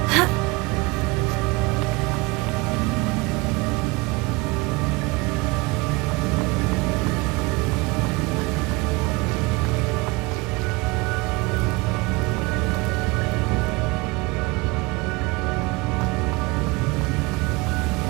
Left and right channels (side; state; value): left; quieter; 24.3 dB